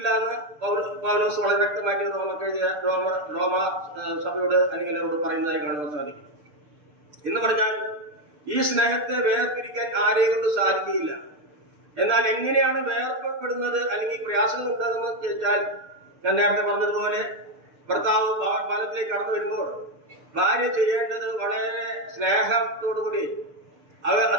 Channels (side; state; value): left; late; 6.8 ms